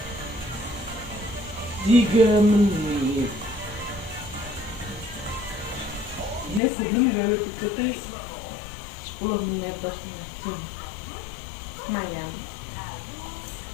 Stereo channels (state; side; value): drops out; right; at 6.6 s